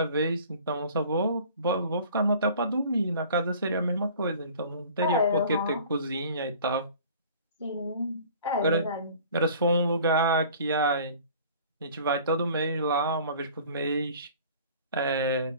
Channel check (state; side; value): inverted; both; correlation -0.47